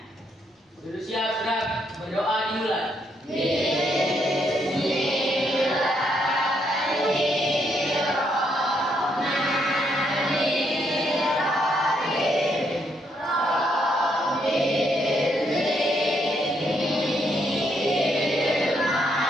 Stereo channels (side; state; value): both; normal; correlation 0.75